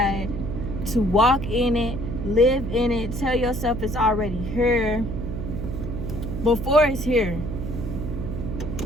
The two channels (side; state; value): right; noise; hum, 5 dB below the sound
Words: to walk in it, live in it, tell yourself it's already here before it's here.